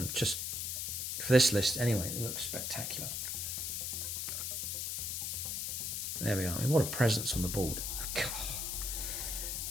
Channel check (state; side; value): noise; left; hiss, 2 dB below the sound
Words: just for this list anyway. It looks spectacular. There we are. I mean, what a presence on the board.